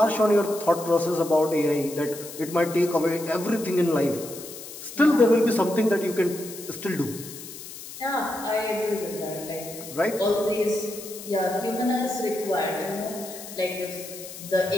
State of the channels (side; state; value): left; noise; hiss, 13 dB below the sound